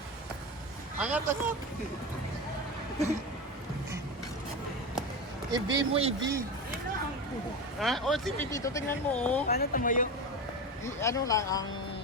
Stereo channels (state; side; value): normal; both; correlation 0.22